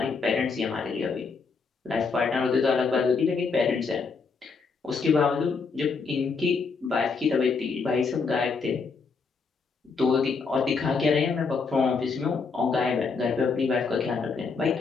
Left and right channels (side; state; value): right; quieter; 4.9 dB